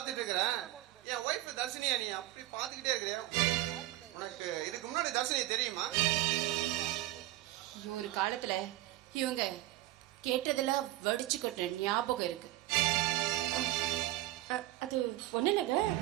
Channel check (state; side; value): quieter; left; 16.0 dB